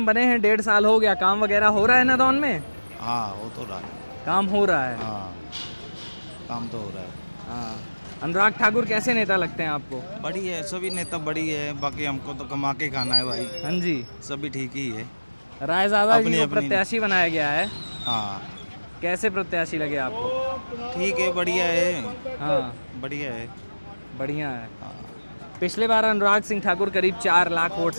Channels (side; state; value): both; inverted; correlation -1.00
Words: बने हैं, 1.5 साल हो गया। काम वगैरह हो रहा है नदौन में? हाँ, हो तो रहा है। काम हो रहा है। हाँ, काम तो हो रहा है। हाँ। अनुराग ठाकुर कैसे नेता लगते हैं आपको? बड़ी है, सभी नेता बड़ी है, बाकी हमको तो कमा के खाना है भाई। हाँ जी। सभी ठीक ही है। रायजादा जी अपनी- को अपनी- प्रत्याशी बनाया गया है। हाँ, कैसे प्रत्याशी लगे आपको? ठीक है, बढ़िया है। हाँ, बढ़िया है। बढ़िया है। हाँ। पिछले बार अनुराग सिंह ठाकुर करीब 4 लाख वोट